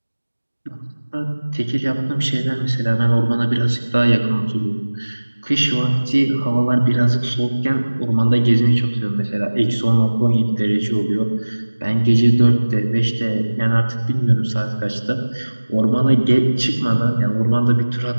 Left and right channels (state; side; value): inverted; both; correlation -1.00